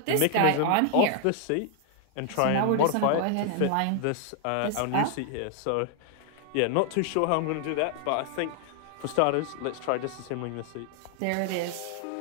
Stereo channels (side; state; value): both; different; correlation 0.00